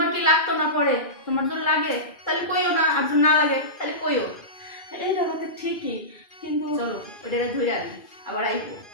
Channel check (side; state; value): right; late; 2.5 ms